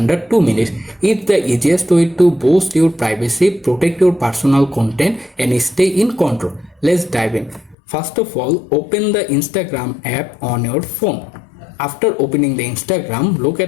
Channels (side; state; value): right; drops out; at 7.8 s